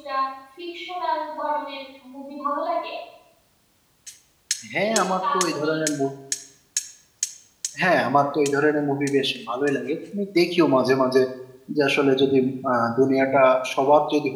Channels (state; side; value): identical; both; correlation 1.00